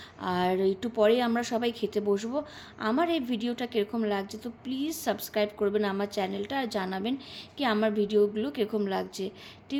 আর একটু পরে আমরা সবাই খেতে বসবো। আমার এই ভিডিওটা কীরকম লাগছে তো প্লিজ সাবস্ক্রাইব করবেন আমার চ্যানেলটা, আর জানাবেন কি আমার ভিডিওগুলো কীরকম লাগছে।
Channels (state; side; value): identical; both; correlation 1.00